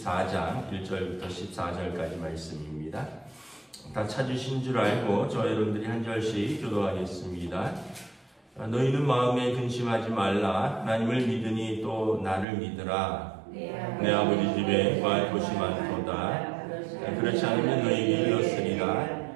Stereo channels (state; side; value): drops out; left; at 12.5 s